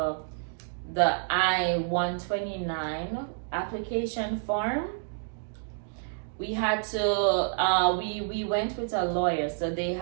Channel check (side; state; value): left; silent; digital silence